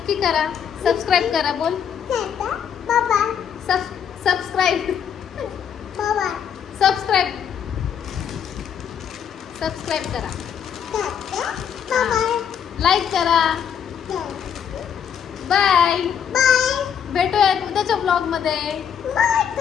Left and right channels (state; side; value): quieter; right; 8.1 dB